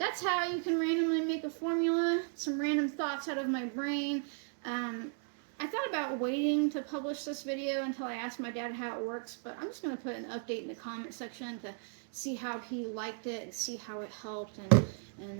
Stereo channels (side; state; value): left; silent; 54 dB below the other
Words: how you can randomly make a formula. Some random thoughts out of my brain. I thought about waiting to publish this video until I asked my dad how it works, but I'm just going to put an update in the comment section to see how he liked it and see how it helped, and